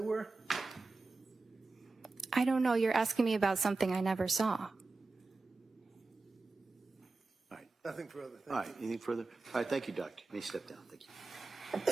I don't know. You're asking me about something I never saw. All right. Nothing further. Thank All right. Anything further? All right. Thank you, Doctor. You may step down. Thank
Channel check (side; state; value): left; quieter; 3.6 dB